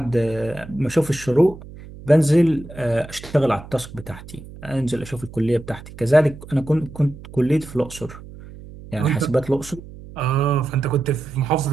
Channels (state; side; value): noise; right; hum, 16 dB below the sound